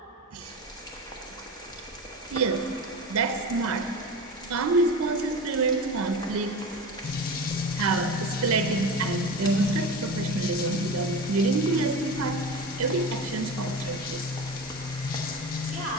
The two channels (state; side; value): normal; both; correlation 0.29